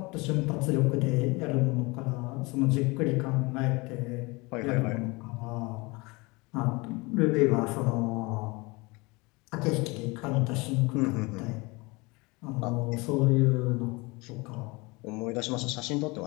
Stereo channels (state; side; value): quieter; right; 25.5 dB